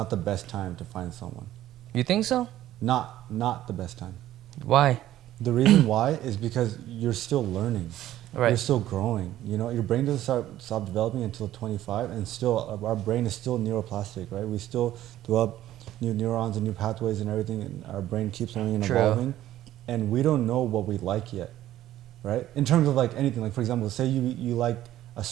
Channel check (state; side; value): quieter; left; 13.4 dB